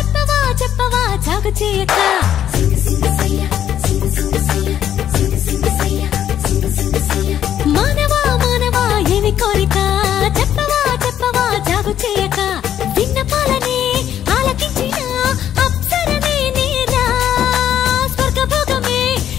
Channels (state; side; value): quieter; right; 10.5 dB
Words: చెప్పవా జాగు చేయక మానవా మానవా ఏమి కోరిక చెప్పవా చెప్పవా జాగు చేయక విన్నపాలనే ఆలకించిన అప్సరనే నేరా స్వర్గభోగమే